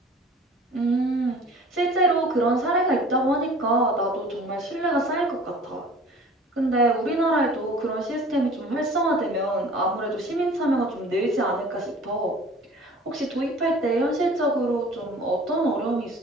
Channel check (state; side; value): normal; both; correlation 0.46